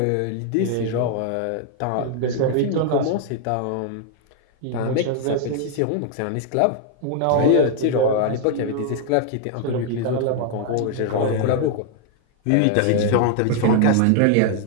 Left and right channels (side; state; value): both; different; correlation 0.00